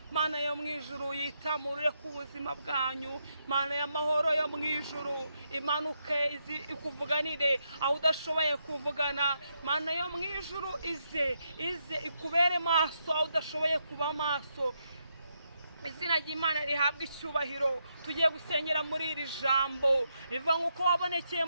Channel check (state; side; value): inverted; both; correlation -0.81